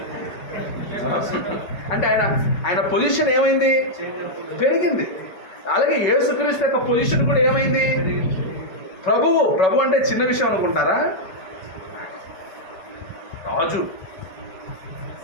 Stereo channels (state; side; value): late; right; 5.3 ms